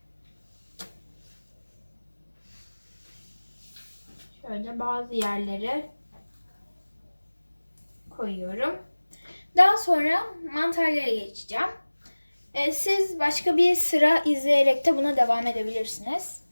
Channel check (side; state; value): both; inverted; correlation -1.00